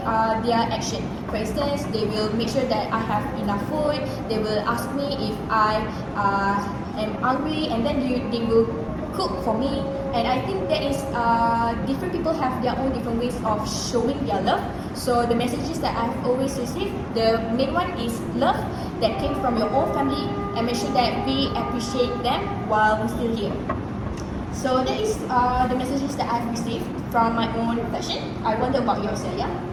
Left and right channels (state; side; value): identical; both; correlation 1.00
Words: their action. For instance, they will make sure that I have enough food. They will ask me if I am hungry, and then they will cook for me. And I think that is different people have their own different ways of showing their love. So the messages that I've always received, the main one is love that came from your own family, and make sure that we appreciate them while we're still here. So that is the messages that I've received from my own reflection. I wonder about yours, Alyaa.